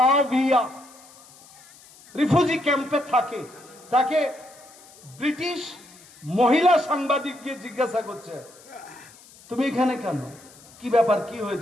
রিফিউজি ক্যাম্পে থাকে। তাকে ব্রিটিশ মহিলা সাংবাদিক গিয়ে জিজ্ঞাসা করছে, তুমি এখানে কেন, কি ব্যাপার, কি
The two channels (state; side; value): noise; left; hiss, 23 dB below the sound